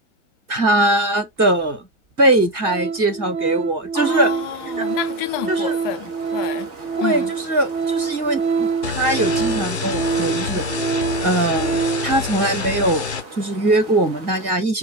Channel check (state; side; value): late; left; 1.8 ms